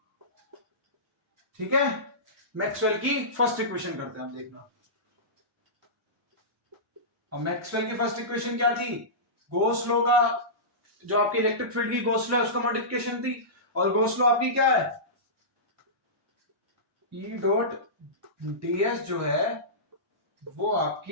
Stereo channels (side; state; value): both; normal; correlation -0.19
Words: ठीक है, मैक्सवेल की फर्स्ट इक्वेशन करते हैं हम, देखना। और मैक्सवेल की फर्स्ट इक्वेशन क्या थी? गॉस लॉ का, जो आपकी इलेक्ट्रिक फील्ड की गॉस लॉ है उसका मॉडिफिकेशन थी। और गॉस लॉ आपकी क्या है? ई डॉट ds जो है वो